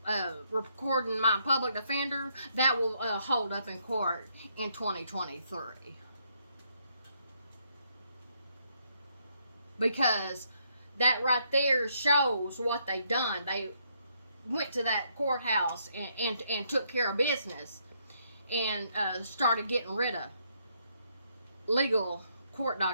recording my public defender, that will hold up in court in 2023. Because that right there shows what they done. They went to that courthouse and took care of business and started getting rid of legal court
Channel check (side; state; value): both; inverted; correlation -0.73